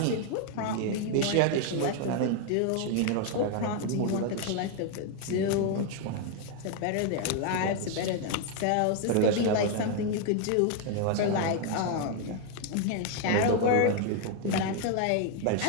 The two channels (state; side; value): different; both; correlation 0.00